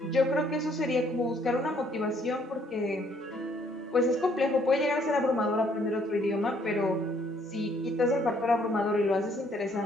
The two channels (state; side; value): normal; both; correlation 0.65